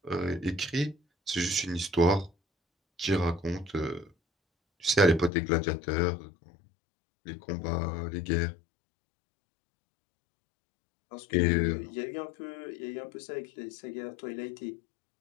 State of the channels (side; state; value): right; drops out; at 5.3 s